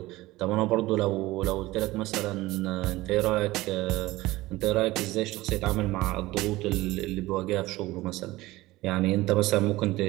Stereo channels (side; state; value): left; quieter; 18.5 dB